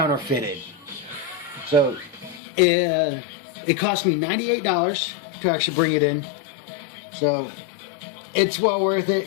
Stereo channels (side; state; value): right; drops out; at 2.4 s